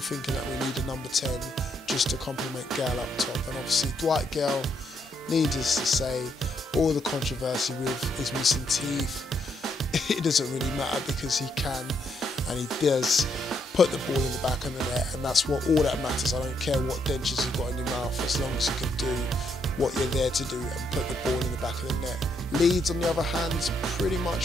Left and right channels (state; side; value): normal; both; correlation 0.75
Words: that we need a number 10 just to complement Gayle up top. And obviously Dwight Gayle, needless to say, all the controversy with his missing teeth, it doesn't really matter because he can and he does put the ball in the back of the net, and that's all that matters. I don't care what dentures you've got in your mouth, as long as you can do what you're there to do and put the ball in the back of the net. Leeds, on the other hand, pretty